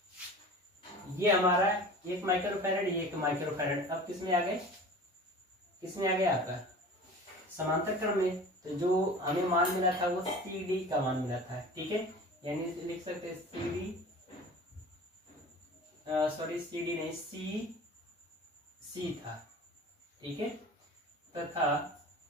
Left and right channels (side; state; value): both; normal; correlation 0.39